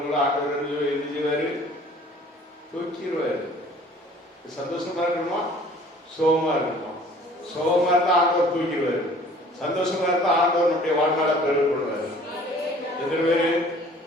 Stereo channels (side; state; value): both; normal; correlation 0.51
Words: ஆண்டவர் என்ன செய்வாரு, தூக்கிடுவாரு. சந்தோஷமா இருக்கணுமா, சோகமா இருக்கணுமா? சோகமா இருந்தா ஆண்டவர் தூக்கிடுவாரு, சந்தோஷமா இருந்தா ஆண்டவர் நம்முடைய வாழ்நாள பெருமைப்படுவாரு. எத்தனை பேரு